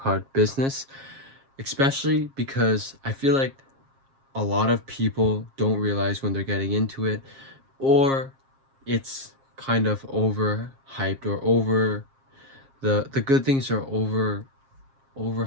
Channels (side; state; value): left; late; 7.4 ms